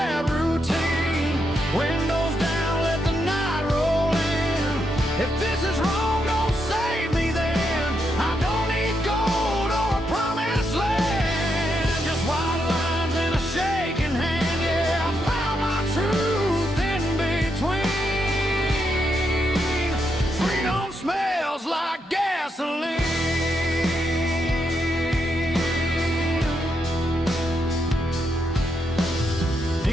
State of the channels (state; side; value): normal; both; correlation 0.81